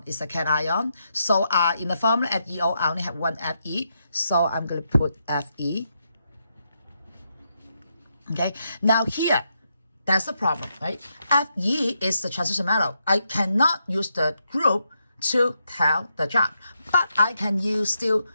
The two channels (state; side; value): inverted; both; correlation -0.82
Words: cation. So in the formula FeO, I only have one Fe. So I'm going to put Fe. Okay, now here, that's the problem, right? Fe is the transition metal. I cannot use the group to tell the charge, but I can still